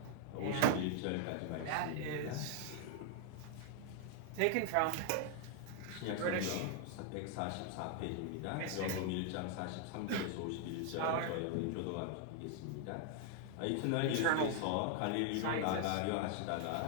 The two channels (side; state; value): both; different; correlation 0.00